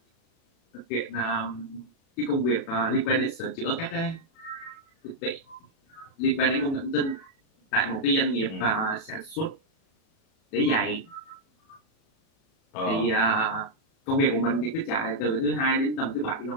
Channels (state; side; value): late; right; 37 ms